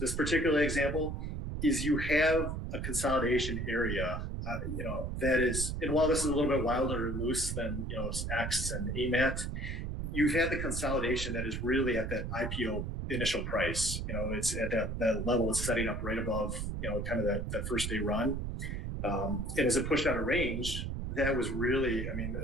particular example is you have a consolidation area, that is, and while this is a little bit wilder and loose than X and AMAT, you've had the consolidation that is really at that IPO initial price. It's at that level. It's setting up right above kind of that first day run. And as it pushed out a range, that was really,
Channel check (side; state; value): right; noise; rumble, 3 dB below the sound